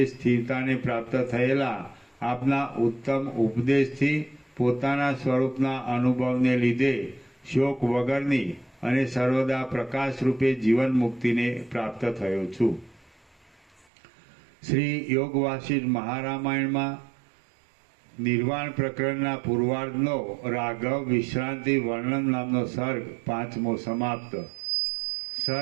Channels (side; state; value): left; drops out; at 13.9 s